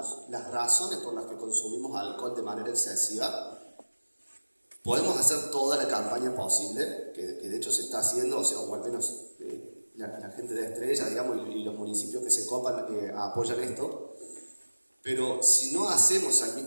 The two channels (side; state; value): both; inverted; correlation -1.00